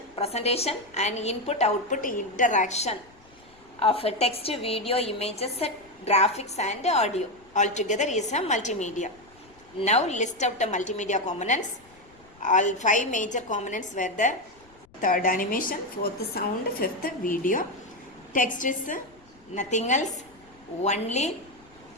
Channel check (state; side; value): noise; left; rumble, 28 dB below the sound